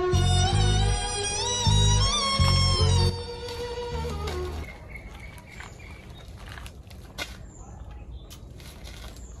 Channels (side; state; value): both; identical; correlation 1.00